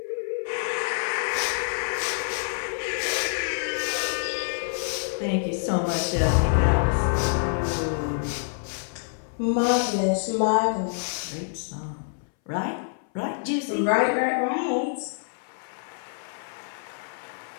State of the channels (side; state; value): right; silent; 60 dB below the other